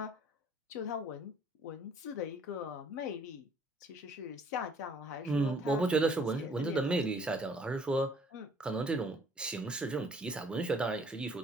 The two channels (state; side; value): normal; both; correlation 0.59